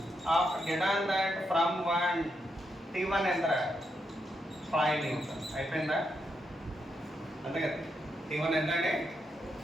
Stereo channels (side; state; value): both; normal; correlation 0.82